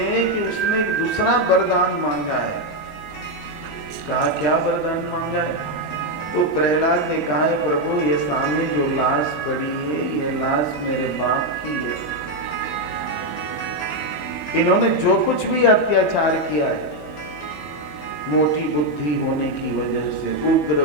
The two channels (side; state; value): both; normal; correlation 0.04